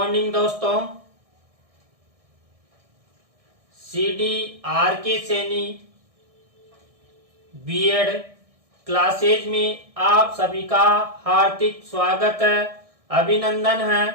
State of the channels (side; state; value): left; late; 1.6 ms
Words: दोस्तों। CDRK Saini BEd classes में आप सभी का हार्दिक स्वागत है, अभिनंदन है।